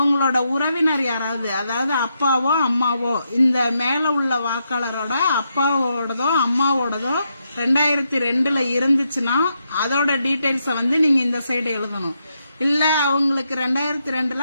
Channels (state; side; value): inverted; both; correlation -0.81